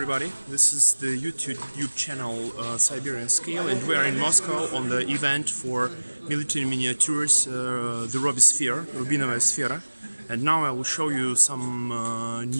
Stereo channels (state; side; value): inverted; both; correlation -1.00